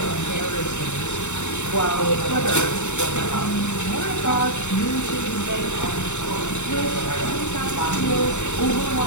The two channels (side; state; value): right; late; 0.84 ms